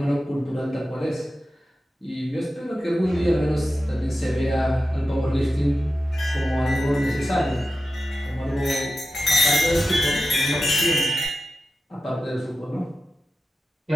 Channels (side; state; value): both; normal; correlation 0.93